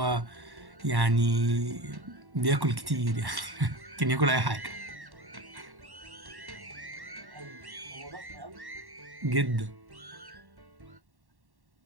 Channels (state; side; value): late; left; 1.1 ms